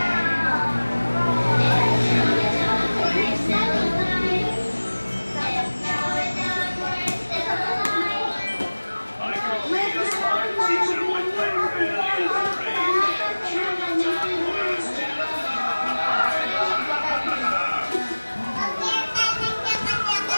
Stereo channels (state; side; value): inverted; both; correlation -1.00